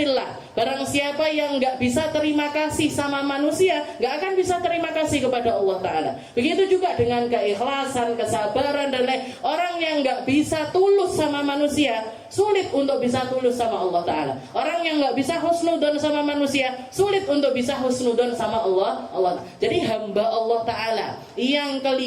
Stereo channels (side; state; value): both; identical; correlation 1.00